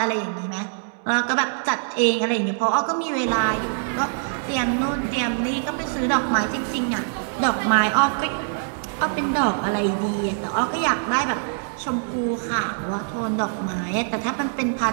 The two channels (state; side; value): silent; left; digital silence